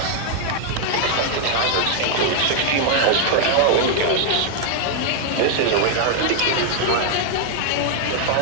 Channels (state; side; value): different; both; correlation 0.00